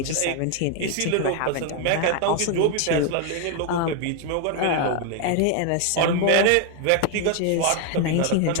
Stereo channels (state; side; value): different; both; correlation 0.01